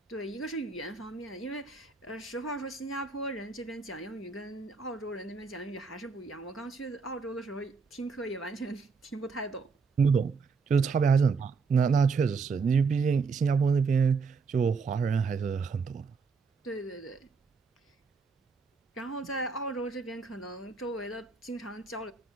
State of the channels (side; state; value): left; quieter; 5.0 dB